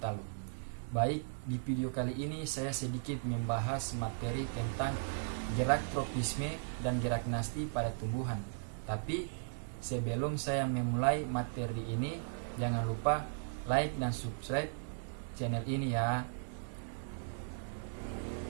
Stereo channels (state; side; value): silent; left; digital silence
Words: Baik, di video kali ini saya sedikit membahas materi tentang gerak tropisme dan gerak nasti pada tumbuhan. Tapi sebelum saya memulai materi ini, jangan lupa like dan subscribe channel ini ya.